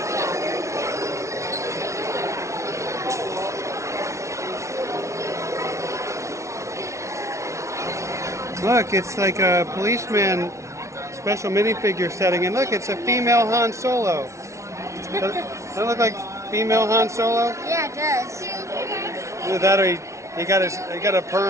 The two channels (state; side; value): late; left; 0.14 ms